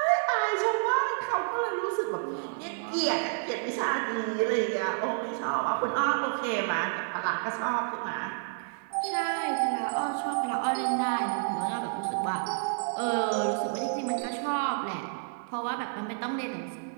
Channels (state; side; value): silent; left; digital silence